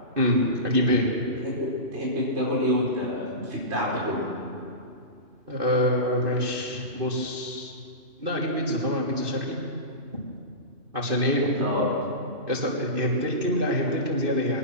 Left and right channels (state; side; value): late; left; 2.6 ms